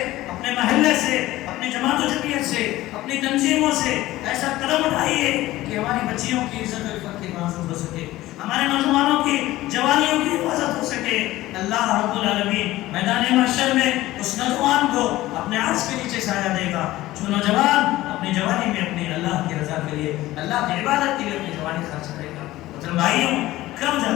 اپنے محلے سے، اپنی جماعت و جمعیت سے، اپنی تنظیموں سے ایسا قدم اٹھائیے کہ ہماری بچیوں کی عزت و عفت کی حفاظت ہو سکے، ہمارے نوجوانوں کی جوانیوں کی حفاظت ہو سکے۔ اللہ رب العالمین میدان محشر میں اس نوجوان کو اپنے عرش کے نیچے سایہ دے گا جو نوجوان اپنی جوانی میں اپنی اللہ کی رضا کے لیے، اللہ کی عبادت کے لیے اپنی جوانی خرچ کرے گا۔ مطلب بھائیوں، کب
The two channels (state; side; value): quieter; right; 16.7 dB